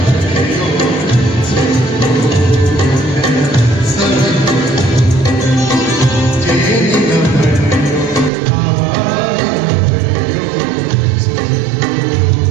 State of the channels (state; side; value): drops out; left; at 8.3 s